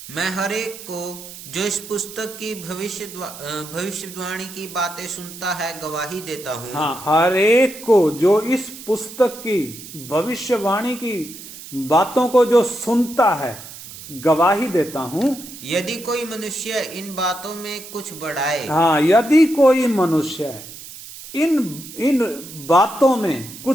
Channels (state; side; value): noise; right; hiss, 14 dB below the sound